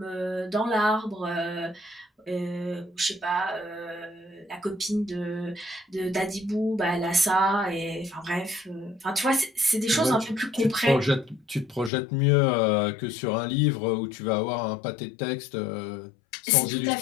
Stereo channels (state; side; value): drops out; right; at 11.9 s